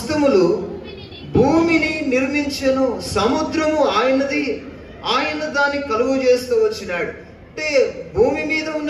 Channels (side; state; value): both; identical; correlation 1.00